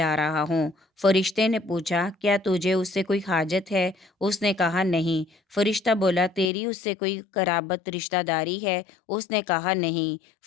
رہا ہوں۔ فرشتے نے پوچھا، کیا تجھے اس سے کوئی حاجت ہے؟ اس نے کہا، نہیں۔ فرشتہ بولا، تیری اس سے کوئی قرابت رشتہ داری ہے؟ اس نے کہا، نہیں۔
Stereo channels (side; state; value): right; drops out; at 6.5 s